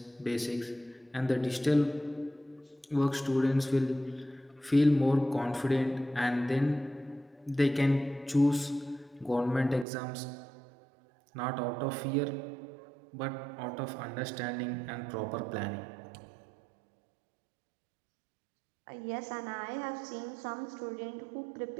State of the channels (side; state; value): left; drops out; at 9.9 s